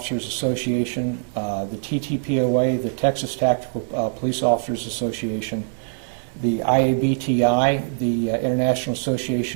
Association, the TTPOA, the Texas Tactical Police Officers Association, the IABTI, the International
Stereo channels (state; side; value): silent; left; digital silence